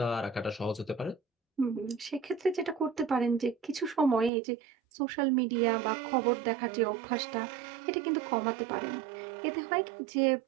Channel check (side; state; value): left; drops out; at 4.3 s